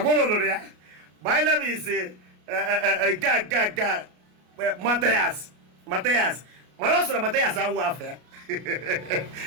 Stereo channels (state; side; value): late; left; 33 ms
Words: lụrụ ya. My name is Mathias. Mana ọ sịrị Mathias awụ afọ ya